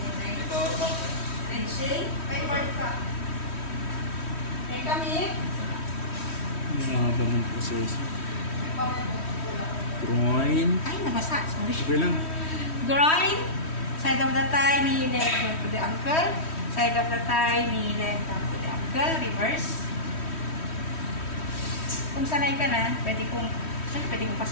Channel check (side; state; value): right; late; 3.1 ms